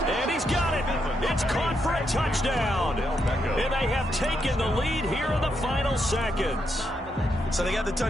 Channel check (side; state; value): both; normal; correlation 0.80